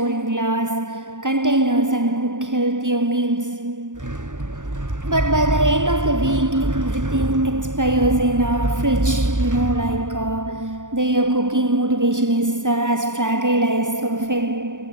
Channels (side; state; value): left; late; 0.86 ms